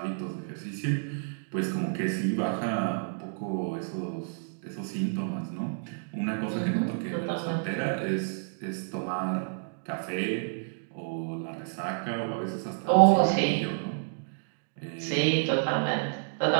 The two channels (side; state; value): left; silent; digital silence